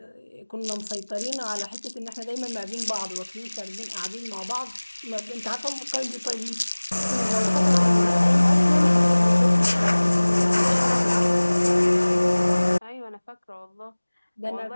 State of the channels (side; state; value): both; inverted; correlation -1.00